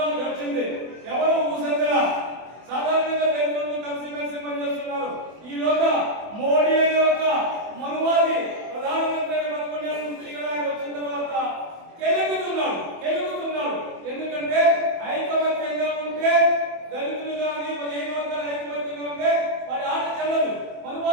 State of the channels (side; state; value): left; late; 24 ms